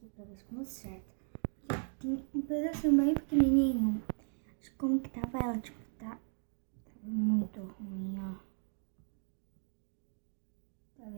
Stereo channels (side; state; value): left; silent; 53 dB below the other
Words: pra ver se como certo. Tem um pedacinho bem pequenininho. Acho que como que tava ela, tipo, tava muito ruim, ó. Tá